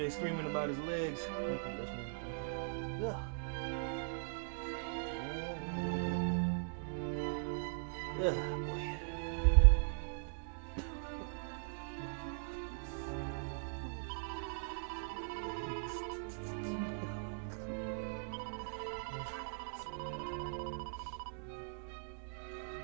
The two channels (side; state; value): left; silent; digital silence